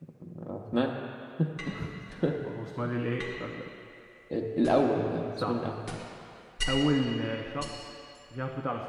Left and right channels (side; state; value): both; identical; correlation 1.00